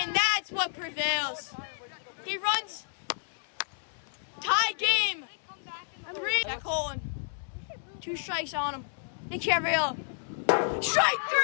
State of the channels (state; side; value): silent; right; digital silence